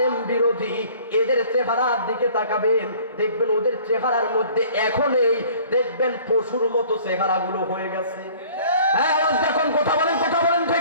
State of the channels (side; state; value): both; inverted; correlation -0.51